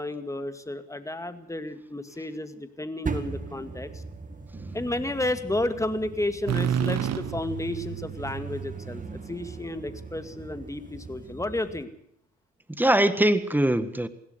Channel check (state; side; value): normal; both; correlation 0.75